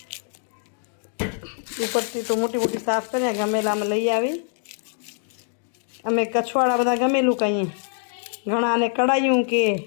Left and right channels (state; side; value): silent; right; 63 dB below the other